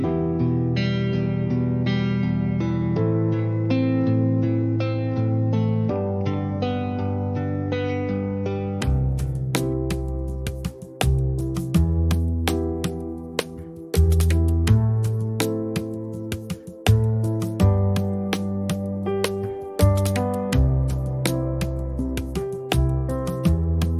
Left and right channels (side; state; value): both; identical; correlation 1.00